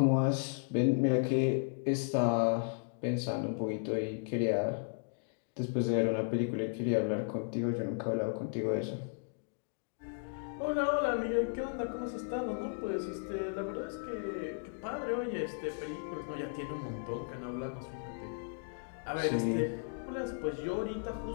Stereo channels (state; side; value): silent; right; digital silence